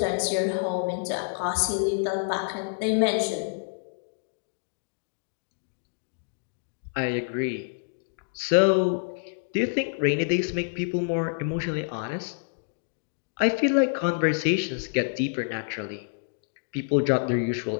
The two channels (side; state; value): right; silent; digital silence